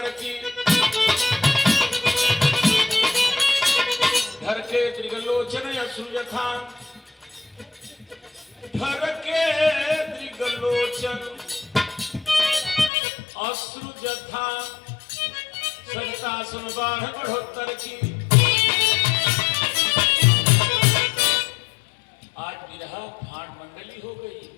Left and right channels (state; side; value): drops out; right; at 12.9 s